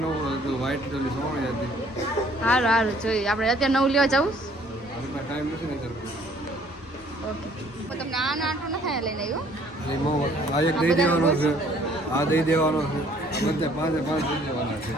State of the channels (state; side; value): normal; both; correlation 0.59